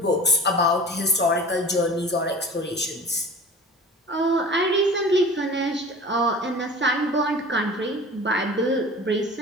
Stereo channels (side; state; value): both; normal; correlation 0.40